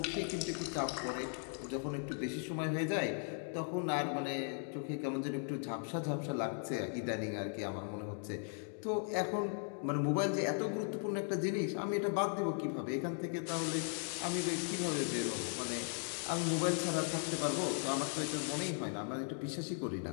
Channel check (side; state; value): right; silent; 53 dB below the other